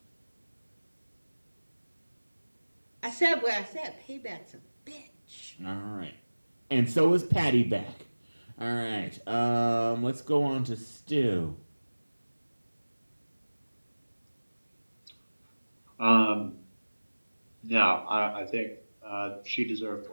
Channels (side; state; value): both; inverted; correlation -1.00